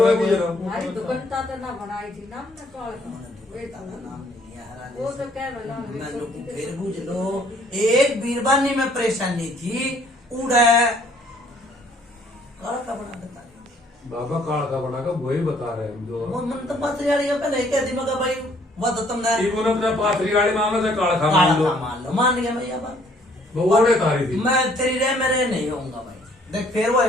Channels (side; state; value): both; normal; correlation 0.62